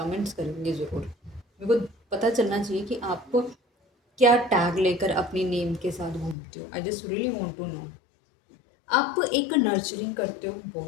करेंगे ज़रूर। मेरे को पता चलना चाहिए कि आप क्या टैग लेकर अपनी नेम के साथ घूमते हो। I just really want to know. आप एक नर्चरिंग करते हो,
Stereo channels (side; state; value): right; drops out; at 6.4 s